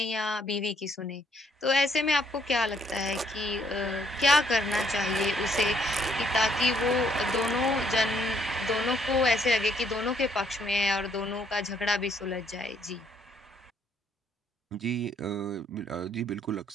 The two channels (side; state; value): both; normal; correlation 0.69